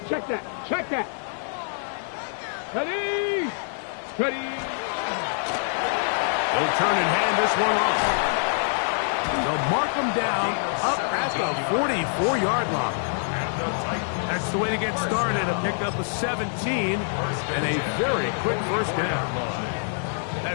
check that. Ready. They'll turn and hand this one off. They'll mark them down up at the 44-yard line. That's the way to get started, to pick up a 17 and a very quick first down.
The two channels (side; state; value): right; silent; digital silence